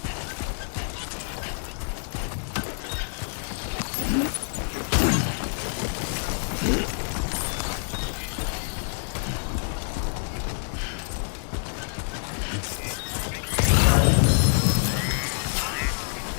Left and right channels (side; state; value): right; silent; digital silence